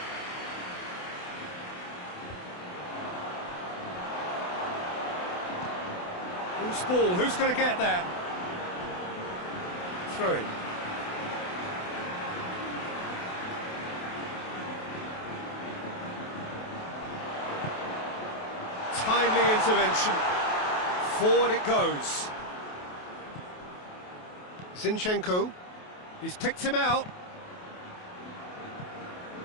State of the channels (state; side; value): late; right; 28 ms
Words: Who's ball? Who's going to get there? Throwing. Timely intervention. Forward it goes. Zinchenko. He's picked him out.